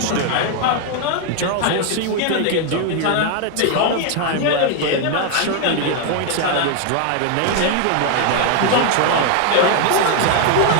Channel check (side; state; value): both; different; correlation 0.01